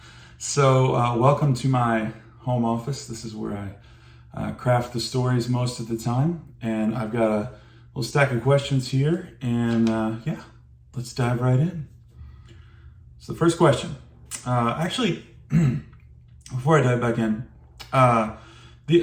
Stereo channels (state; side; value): identical; both; correlation 1.00